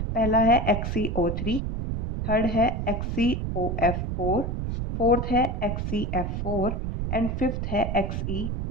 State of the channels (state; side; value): noise; right; rumble, 2 dB below the sound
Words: पहला है XeO3, थर्ड है XeOF4, फोर्थ है XeF4 एंड फिफ्थ है